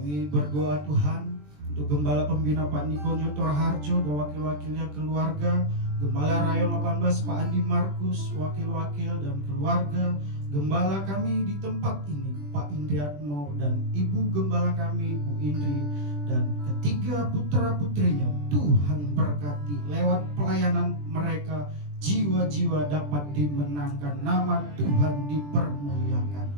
berdoa Tuhan untuk Gembala Pembina Pak Niko Nyotor Harjo dan wakil-wakilnya keluarga, Gembala Rayon 18 Pak Andi Markus, wakil-wakil dan keluarga, Gembala kami di tempat ini Pak Indriatmo dan Ibu Gembala kami Bu Indri dan ketiga putra-putrinya. Tuhan berkati lewat pelayanan mereka, jiwa-jiwa dapat dimenangkan, nama Tuhan dipermuliakan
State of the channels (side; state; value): left; late; 20 ms